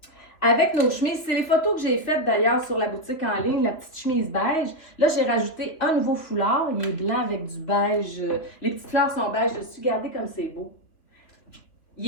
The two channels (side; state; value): right; late; 3.1 ms